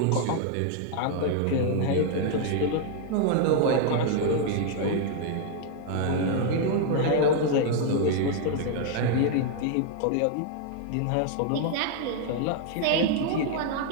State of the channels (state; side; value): different; both; correlation 0.00